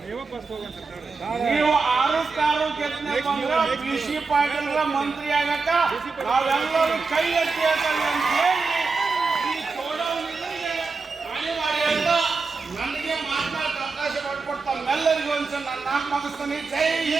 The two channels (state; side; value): quieter; left; 4.4 dB